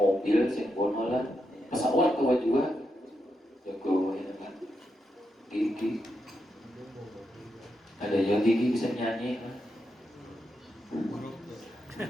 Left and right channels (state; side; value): normal; both; correlation 0.84